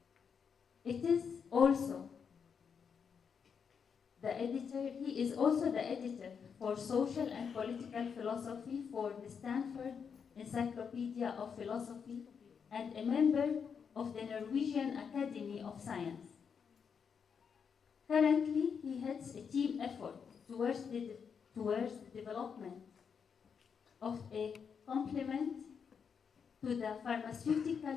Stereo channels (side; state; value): right; quieter; 6.6 dB